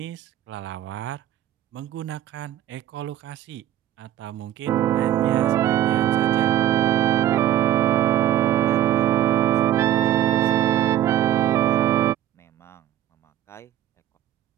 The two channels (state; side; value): quieter; left; 12.3 dB